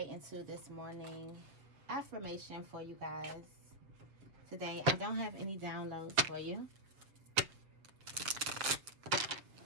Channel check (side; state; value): left; late; 7.6 ms